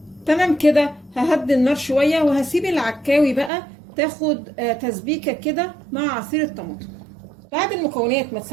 تمام كده. ههدي النار شويه وهسيب العكاوي بقى تاخد تسبيكه كده مع عصير الطماطم. بعد المكونات ما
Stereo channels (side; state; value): left; drops out; at 3.5 s